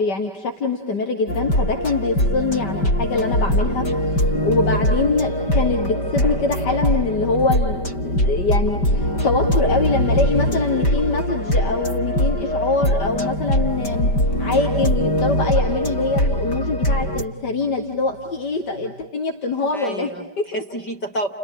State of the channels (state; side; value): late; right; 5.1 ms